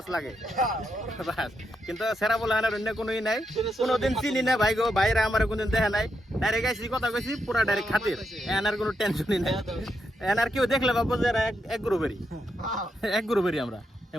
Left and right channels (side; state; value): both; normal; correlation 0.82